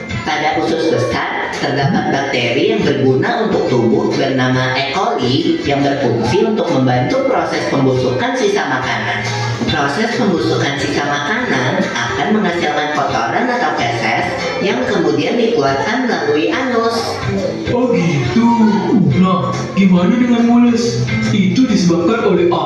Pada usus besar, terdapat bakteri yang berguna untuk tubuh bernama E. coli yang berfungsi untuk membantu proses pembusukan sisa makanan. Proses pembusukan sisa makanan akan menghasilkan kotoran atau feses yang kemudian dikeluarkan melalui anus. Oh gitu. Nah, gimana dengan mules? Itu disebabkan oleh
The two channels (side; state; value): both; identical; correlation 1.00